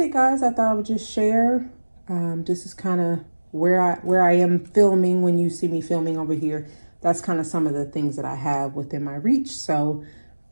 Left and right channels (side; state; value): both; inverted; correlation -1.00